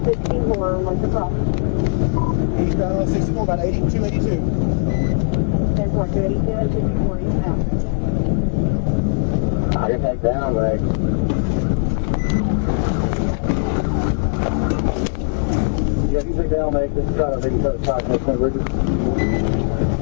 I get that down, right? Sit down, right? You try to lift it up, fine, that's good.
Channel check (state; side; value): silent; right; digital silence